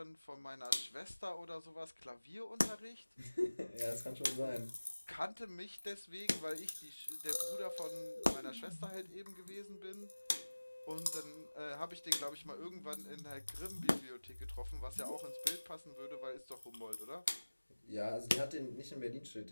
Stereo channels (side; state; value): both; inverted; correlation -1.00